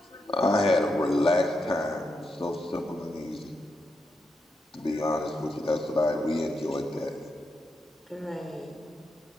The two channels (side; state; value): both; normal; correlation 0.84